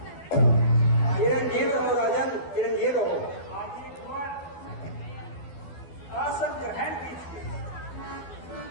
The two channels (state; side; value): late; right; 12 ms